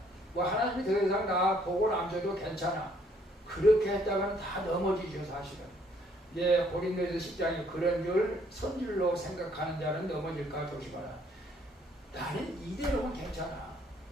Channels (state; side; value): normal; both; correlation 0.65